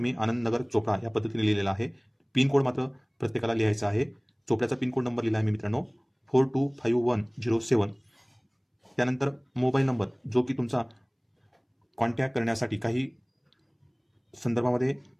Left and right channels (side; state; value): both; identical; correlation 1.00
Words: मी आनंदनगर चोपडा या पद्धतीने लिहिलेला आहे. पिनकोड मात्र प्रत्येकाला लिहायचा आहे. चोपड्याचा पिनकोड नंबर लिहिला आहे मी मित्रांनो 425107. त्यानंतर मोबाईल नंबर जो की तुमचा कॉन्टॅक्ट करण्यासाठी काही संदर्भामध्ये